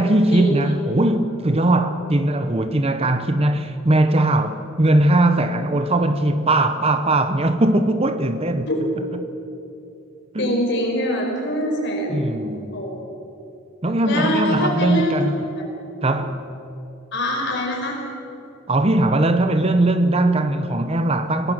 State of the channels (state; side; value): normal; both; correlation 0.62